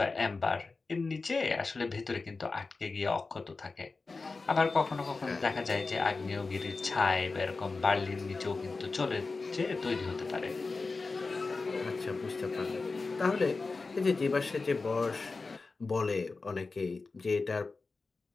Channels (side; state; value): right; quieter; 3.9 dB